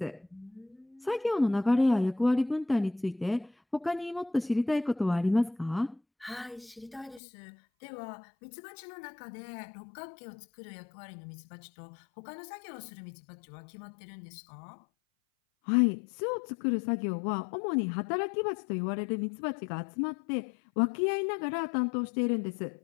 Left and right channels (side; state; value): right; drops out; at 7.2 s